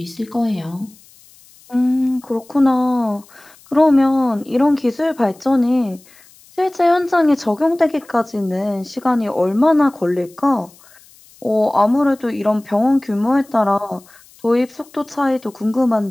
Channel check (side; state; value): left; noise; hiss, 27 dB below the sound